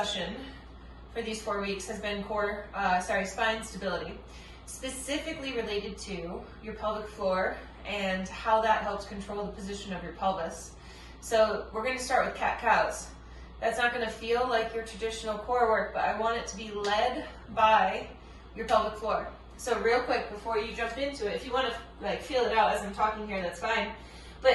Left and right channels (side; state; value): both; identical; correlation 1.00